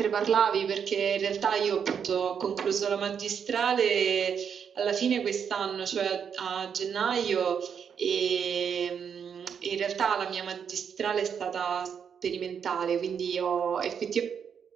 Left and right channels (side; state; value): left; quieter; 7.3 dB